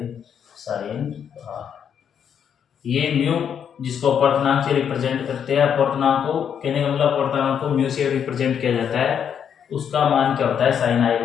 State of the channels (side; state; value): right; quieter; 8.1 dB